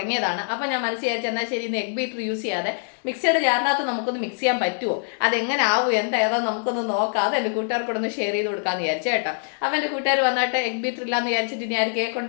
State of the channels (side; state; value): right; silent; 63 dB below the other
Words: അപ്പോൾ ഞാൻ മനസ്സിൽ വിചാരിച്ചു എന്നാൽ ശരി, ഇന്ന് എഗ് ബീറ്റർ യൂസ് ചെയ്യാതെ മിക്സിയുടെ ജാറിനകത്ത് നമുക്കൊന്ന് മിക്സ് ചെയ്യാൻ പറ്റുമോ, അതെങ്ങനെ ആവും, ഏതാ നമുക്കൊന്ന് നോക്കാം, അത് എൻ്റെ കൂട്ടുകാർക്കൊന്ന് ഷെയർ ചെയ്ത് കൊടുക്കാമെന്ന് വിചാരിച്ചു കേട്ടോ. അപ്പോൾ എൻ്റെ കൂട്ടുകാർ വന്നിട്ട് എഗ് ബീറ്റർ ഇല്ലാന്ന് വിചാരിച്ചിട്ട് ഇനി ആരും കേക്ക്